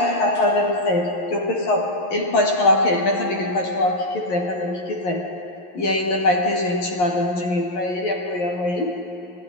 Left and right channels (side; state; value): right; late; 11 ms